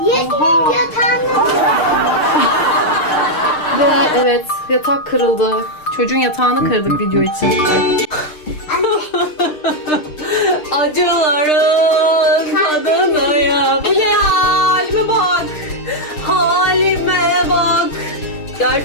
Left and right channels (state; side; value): late; right; 6.6 ms